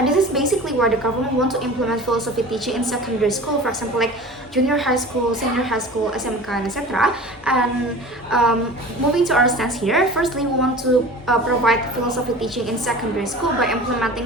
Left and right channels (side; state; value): both; normal; correlation 0.39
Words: this is basically why the government want to implement philosophy teaching in secondary school, for example, like junior high school, senior high school, SMK, and etc. And moving to our stance here, firstly, we want to provide philosophy teaching in secondary school by